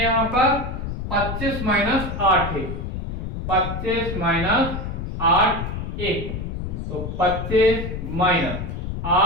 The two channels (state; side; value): noise; left; rumble, 5 dB below the sound